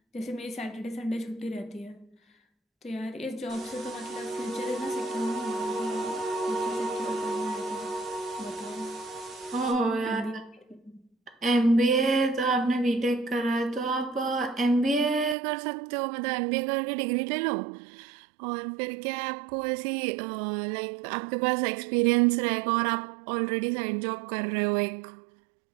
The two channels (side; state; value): left; drops out; at 15.4 s